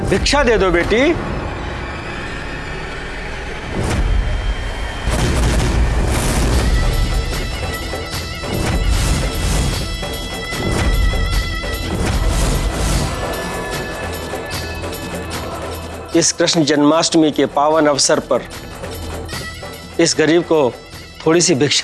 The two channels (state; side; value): identical; both; correlation 1.00